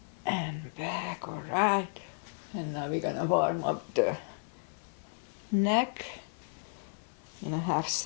and back, all right. And now we're gonna warm up the neck in a half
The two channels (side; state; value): right; silent; digital silence